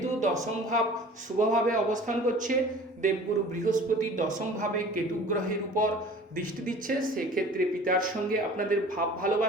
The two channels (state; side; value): normal; both; correlation 0.45